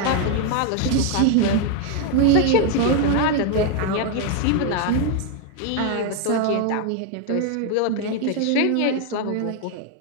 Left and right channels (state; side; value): different; both; correlation 0.01